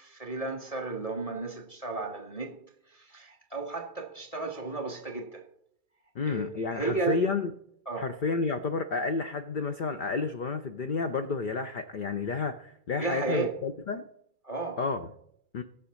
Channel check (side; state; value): right; late; 2.3 ms